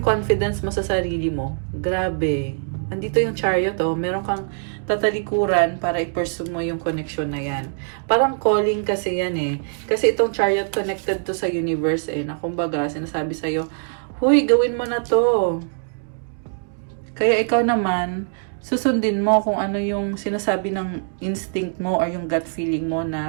confidence mo sa sarili mo. Grabe. Andito yung Chariot, oh. Meron kang tatalikuran para i-pursue mo yung connection na yan. Parang calling kasi yan eh. Kasi itong Chariot connected to sa universe eh. Na kumbaga, sinasabi sa'yo, huy, gawin mo na to. Kaya ikaw naman, susundin mo kung ano yung sinasabi ng instinct mo or yung gut feeling mo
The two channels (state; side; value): silent; left; digital silence